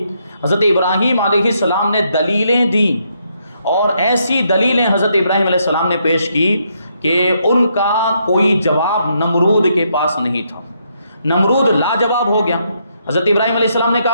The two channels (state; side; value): inverted; both; correlation -0.76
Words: حضرت ابراہیم علیہ السلام نے دلیلیں دیں، اور ایسی دلیلیں حضرت ابراہیم علیہ السلام نے پیش کی کہ ان کا کوئی جواب نمرود کے پاس نہیں تھا۔ نمرود لاجواب ہو گیا۔ حضرت ابراہیم علیہ السلام نے